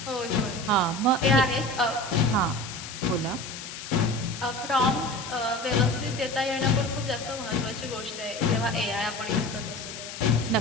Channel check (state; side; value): noise; left; hiss, 10 dB below the sound